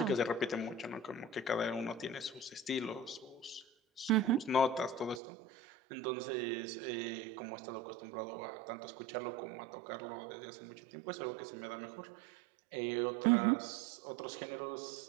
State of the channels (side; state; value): left; drops out; at 5.2 s